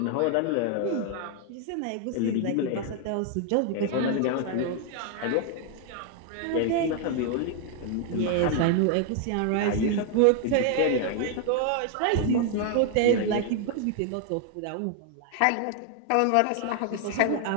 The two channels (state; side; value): different; both; correlation 0.00